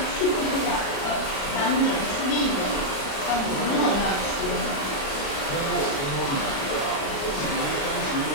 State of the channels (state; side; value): late; right; 36 ms